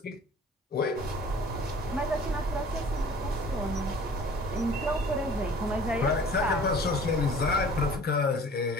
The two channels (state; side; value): normal; both; correlation 0.48